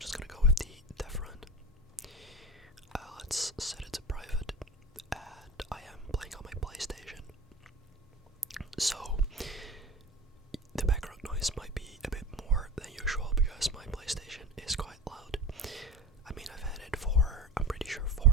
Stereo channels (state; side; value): normal; both; correlation 0.33